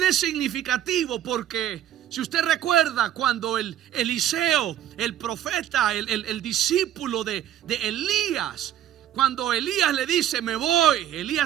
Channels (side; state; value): left; quieter; 11.3 dB